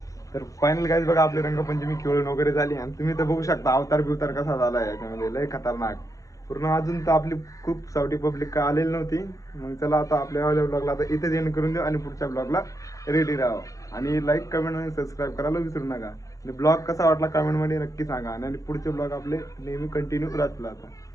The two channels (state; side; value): late; right; 0.16 ms